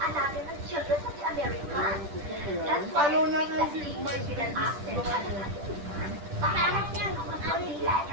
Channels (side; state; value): left; late; 10 ms